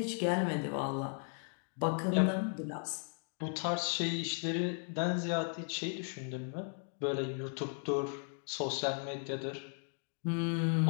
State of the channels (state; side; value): silent; right; 54 dB below the other